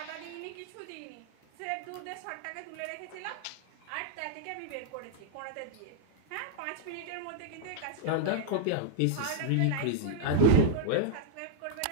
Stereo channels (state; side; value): different; both; correlation -0.01